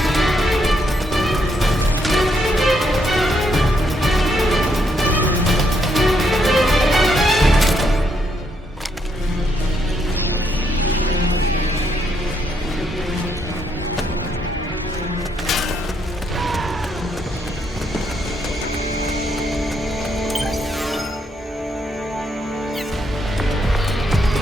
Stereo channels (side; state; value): both; normal; correlation 0.76